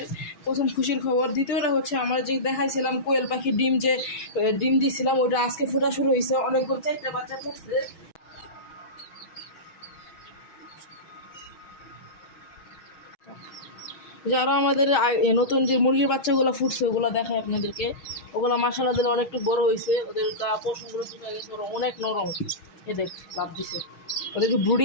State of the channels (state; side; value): late; right; 6.2 ms